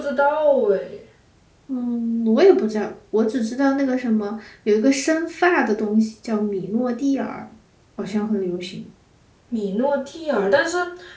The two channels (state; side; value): identical; both; correlation 1.00